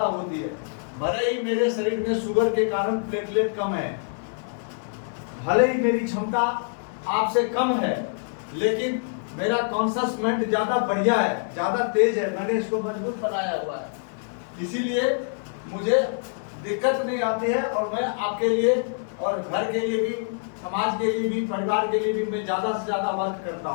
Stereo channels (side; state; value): right; silent; 61 dB below the other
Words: होती है। भले ही मेरे शरीर में शुगर के कारण प्लेटलेट कम है, भले ही मेरी क्षमता आपसे कम है, लेकिन मेरा कॉन्शियस माइंड ज्यादा बढ़िया है, ज्यादा तेज है, मैंने इसको मजबूत बनाया हुआ है, इसीलिए मुझे दिक्कत नहीं आती है। और मैं आपके लिए और घर के लिए भी, समाज के लिए भी, परिवार के लिए भी मैं ज्यादा से ज्यादा वर्क करता